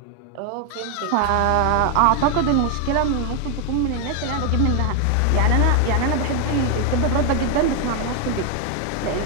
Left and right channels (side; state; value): both; different; correlation 0.01